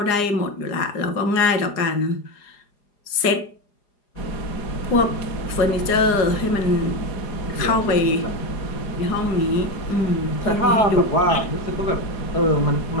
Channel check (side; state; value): right; late; 4.9 ms